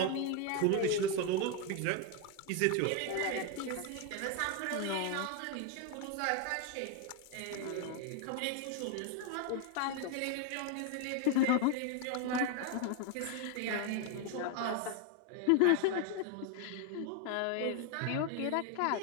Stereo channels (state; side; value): different; both; correlation 0.01